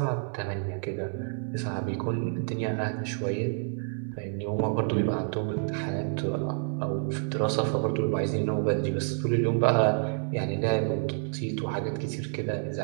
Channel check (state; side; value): silent; left; 57 dB below the other